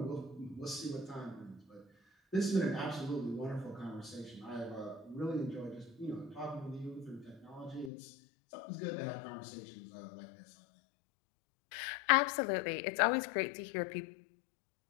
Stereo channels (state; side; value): drops out; right; at 7.9 s